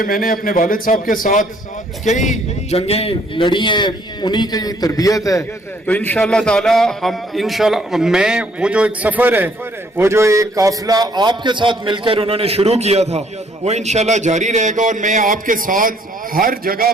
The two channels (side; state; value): both; normal; correlation 0.64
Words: میں نے اپنے والد صاحب کے ساتھ کئی جنگیں لڑی ہیں, انہی کی تربیت ہے, تو انشاءاللہ تعالیٰ میں وہ جو ایک سفر ہے, وہ جو ایک قافلہ آپ کے ساتھ مل کر انہوں نے شروع کیا تھا, وہ انشاءاللہ جاری رہے گا, اور میں آپ کے ساتھ ہر جگہ